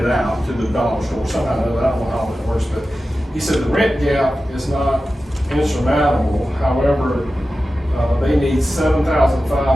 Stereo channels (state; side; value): normal; both; correlation 0.94